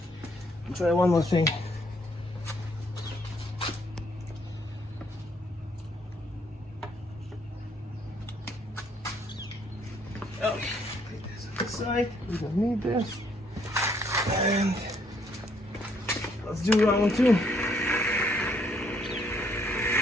We'll try one more thing. Okay, put this on the side. We don't need this. And let's do round one too.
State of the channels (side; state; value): both; normal; correlation 0.68